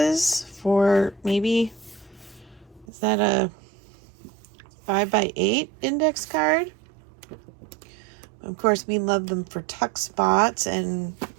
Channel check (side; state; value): left; drops out; at 2.9 s